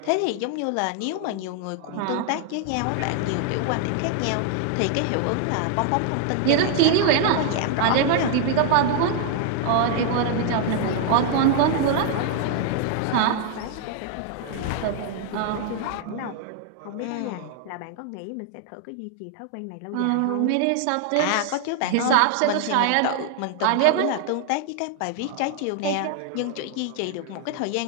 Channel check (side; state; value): both; different; correlation 0.00